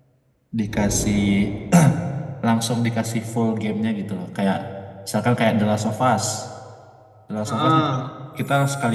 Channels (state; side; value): identical; both; correlation 1.00